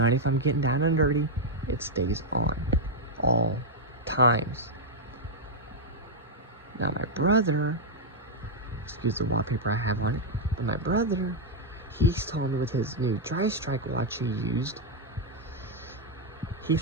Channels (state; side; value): normal; both; correlation -0.02